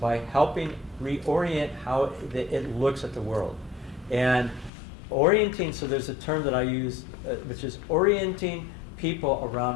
helping reorient how it looks at the world. And orienting, so there's a term that I use, which is orienting people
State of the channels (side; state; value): right; drops out; at 4.7 s